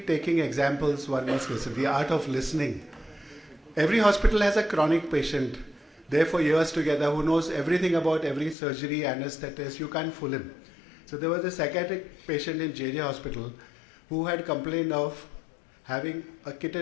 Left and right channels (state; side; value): drops out; right; at 8.6 s